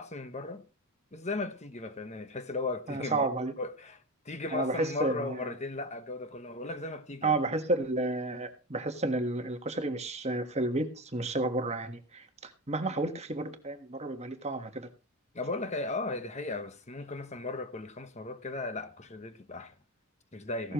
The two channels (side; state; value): both; normal; correlation 0.21